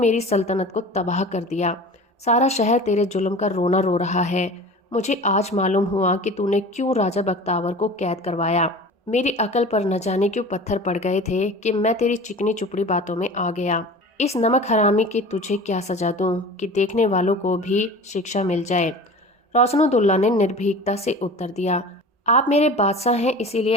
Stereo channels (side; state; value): both; normal; correlation 0.38